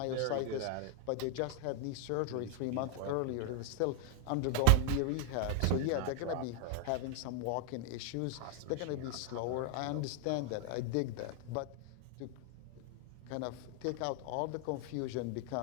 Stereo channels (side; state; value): both; different; correlation 0.00